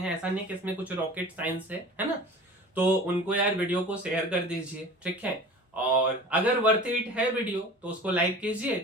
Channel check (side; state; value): both; normal; correlation 0.40